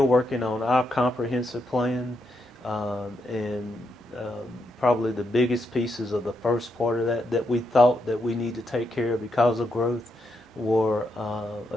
working on our comprehensive plan, and probably the biggest pieces of the first part of that we thought that we need to take care of because of growth were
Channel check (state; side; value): normal; both; correlation 0.81